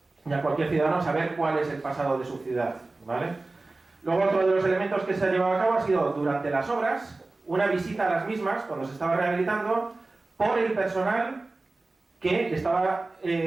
y a cualquier ciudadano, saber cuál es el pasado de su ciudad, ¿vale? Luego, otro de los elementos que se ha llevado a cabo ha sido, durante las obras, una visita a las mismas, cuando se estaba rehabilitando, por el personal que estaba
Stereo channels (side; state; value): left; quieter; 3.3 dB